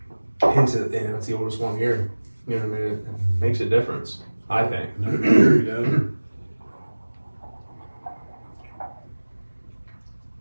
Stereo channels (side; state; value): both; inverted; correlation -1.00